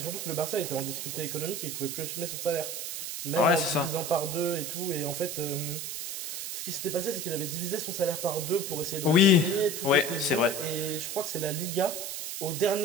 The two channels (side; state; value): right; noise; hiss, 5 dB below the sound